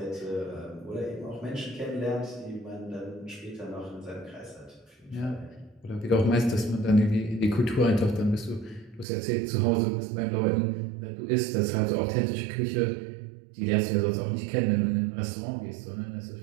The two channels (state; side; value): drops out; left; at 9.1 s